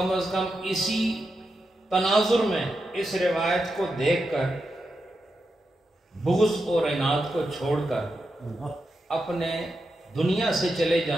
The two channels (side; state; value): both; normal; correlation 0.87